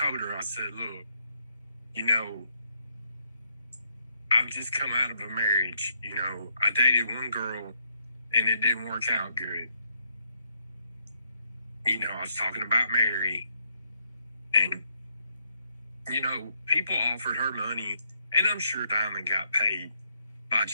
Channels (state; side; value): inverted; both; correlation -0.75